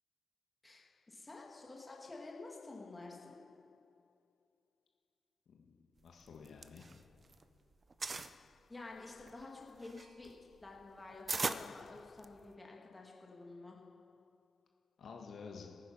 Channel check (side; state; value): both; normal; correlation 0.90